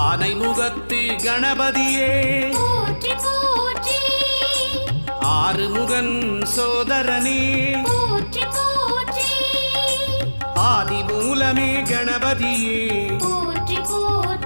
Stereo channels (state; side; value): inverted; both; correlation -1.00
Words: முகத்து கணபதியே போற்றி போற்றி ஆறுமுகன் சோதரனே போற்றி போற்றி ஆதி மூலமே கணபதியே போற்றி